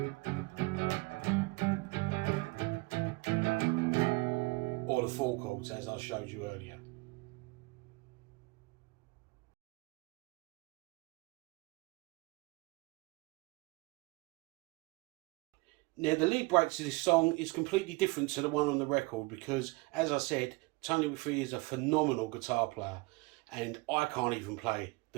Or the 4 chords, as I showed you earlier. Now the lead break to this song is completely different to the one on the record because, as I said, Tony Mcphee is a phenomenal guitar player, and I can't even play the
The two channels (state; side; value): quieter; left; 25.3 dB